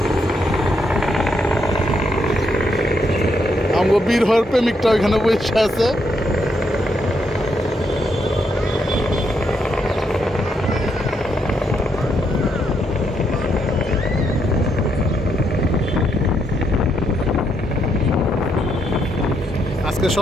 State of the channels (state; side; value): normal; both; correlation 0.77